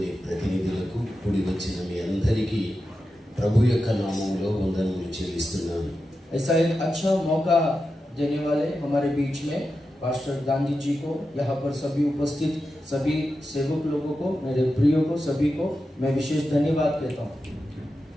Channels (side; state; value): both; normal; correlation 0.90